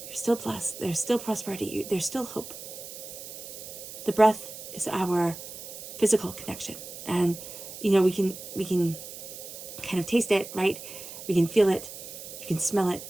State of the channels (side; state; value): right; noise; hiss, 12 dB below the sound